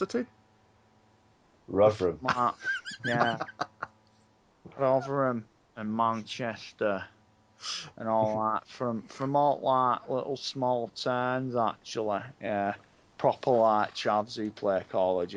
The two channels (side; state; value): both; identical; correlation 1.00